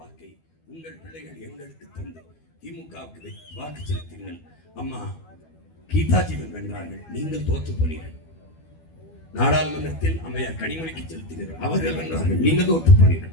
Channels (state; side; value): late; right; 12 ms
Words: வாக்கை உங்கள் பிள்ளைகள் எங்களுக்கு தந்து திமுகவுக்கு வாக்கு செலுத்தினீர்கள். அம்மா கீதாஜீவன் வென்றார்கள், நீங்கள் தோற்று போனீர்கள். நாடாளுமன்றத்தில் அம்மையார் கனிமொழிக்கு செலுத்தினீர்கள், அவர்கள் வென்றார்கள், நீங்கள் தோற்று